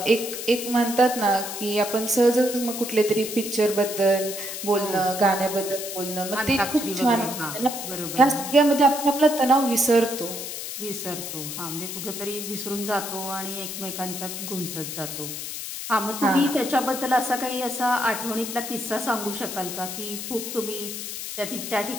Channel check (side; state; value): left; noise; hiss, 7 dB below the sound